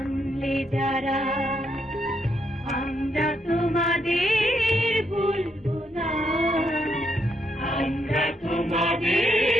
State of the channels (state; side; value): normal; both; correlation 0.77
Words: যারা, আমরা তোমাদের ভুলবো না, আমরা